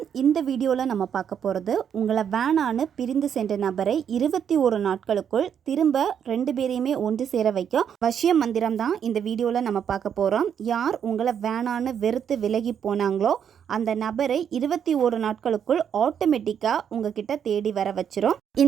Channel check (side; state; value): left; quieter; 8.3 dB